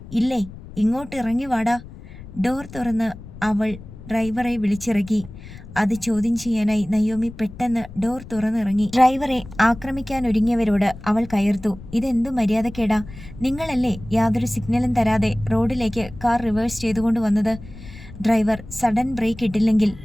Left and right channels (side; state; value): left; noise; rumble, 16 dB below the sound